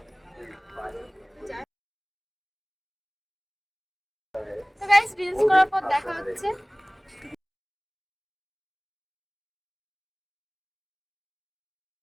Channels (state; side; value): identical; both; correlation 1.00